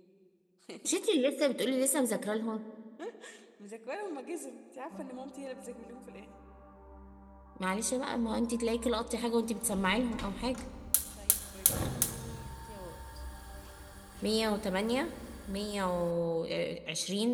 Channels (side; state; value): both; identical; correlation 1.00